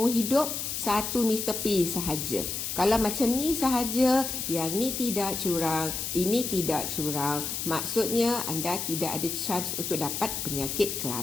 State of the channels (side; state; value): left; noise; hiss, 3 dB below the sound